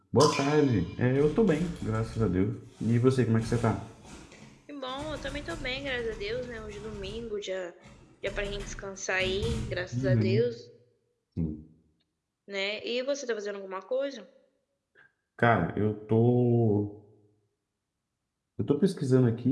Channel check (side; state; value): both; identical; correlation 1.00